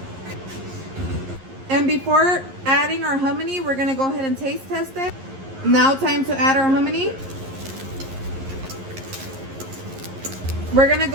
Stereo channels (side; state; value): left; late; 11 ms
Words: And before adding our hominy, we're gonna go ahead and taste test it. Now time to add our hominy. We're gonna